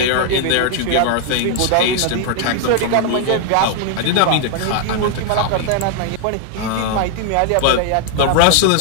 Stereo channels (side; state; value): both; different; correlation 0.00